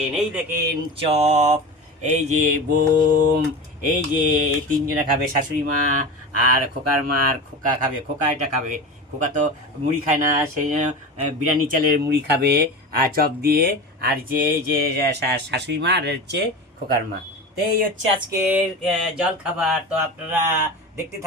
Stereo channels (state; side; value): normal; both; correlation 0.29